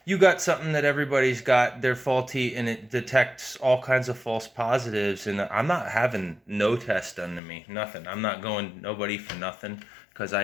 you got something that everybody's got, they're faulty, and it detects all kinds of false positives, and I'm not having no test done to me, nothing. I'm not going nobody for nothing because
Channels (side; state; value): right; drops out; at 7.4 s